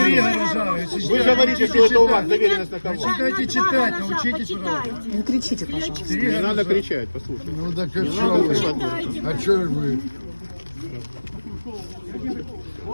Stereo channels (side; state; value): both; inverted; correlation -1.00